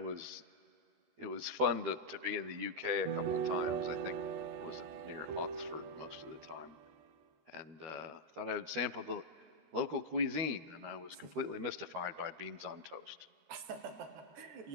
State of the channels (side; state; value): left; late; 13 ms